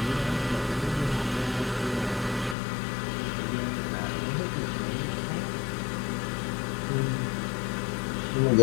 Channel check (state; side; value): drops out; right; at 2.6 s